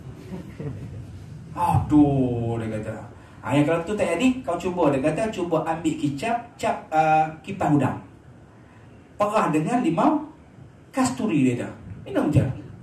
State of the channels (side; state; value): both; identical; correlation 1.00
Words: Aduh, dia kata. Yang kalau tu tak jadi, kau cuba, dia kata cuba ambil cap kipas udang, perah dengan limau kasturi dia dah. Minum je.